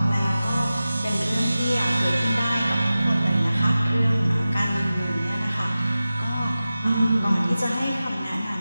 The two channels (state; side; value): inverted; both; correlation -0.95